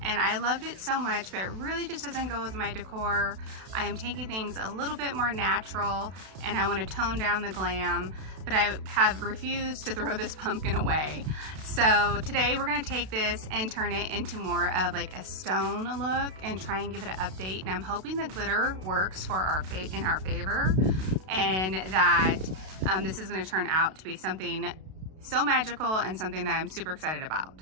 and I loved it so much, but it really just doesn't go with my decor. I am taking things a little bit more natural, and I want to tone down the glam, but I have refused to throw this pumpkin away. So today we're going to take this and turn it into more of like a stone look and try and give it an update, and I'm hoping the glitter works for in our favor, and that this is going to turn out to be something so magical and something that I'm super excited about.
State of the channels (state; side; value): late; left; 32 ms